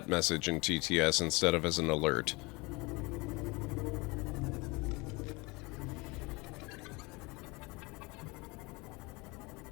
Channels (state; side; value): quieter; right; 25.2 dB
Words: message in TTS instead of as an alert.